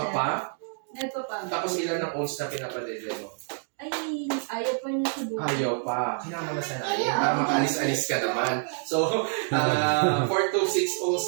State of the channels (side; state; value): left; silent; 57 dB below the other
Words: Tapos ilan ng oats na pinapadede mo? Ay, ayaw pa niya subukan. Ayaw pa. Kailangan mo na sanayin para makaalis-alis ka naman. So, 4 to 6